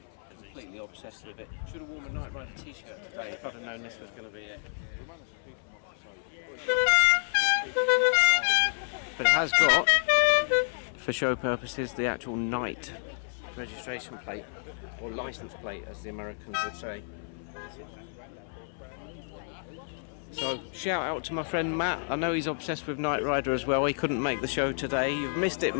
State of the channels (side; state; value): right; silent; 58 dB below the other